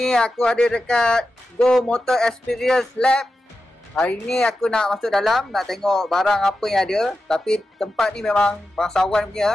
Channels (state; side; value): normal; both; correlation 0.91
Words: aku ada dekat Go Motor Experience Lab. Hari ni aku nak masuk dalam, nak tengok barang apa yang ada. Tapi tempat ni memang bangsawan